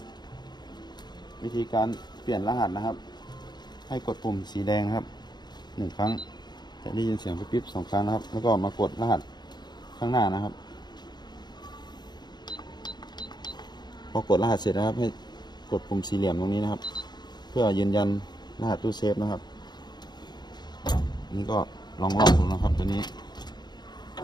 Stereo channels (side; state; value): right; late; 0.21 ms